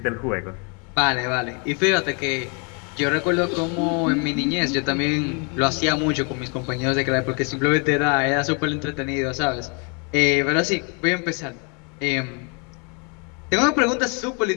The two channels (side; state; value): right; quieter; 34.9 dB